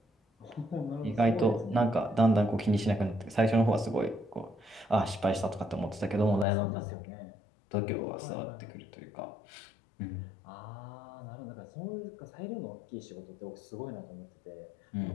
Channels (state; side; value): drops out; right; at 6.5 s